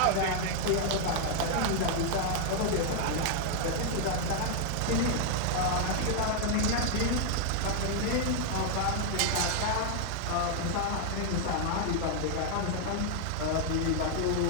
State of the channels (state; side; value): different; both; correlation 0.00